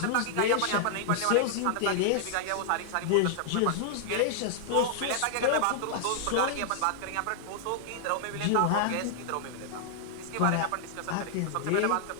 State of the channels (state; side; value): different; both; correlation -0.01